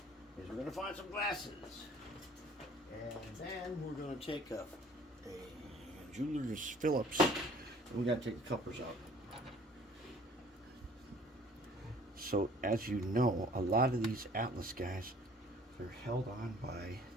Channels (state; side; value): normal; both; correlation 0.53